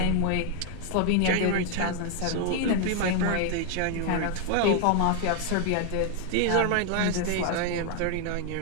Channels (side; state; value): both; different; correlation 0.00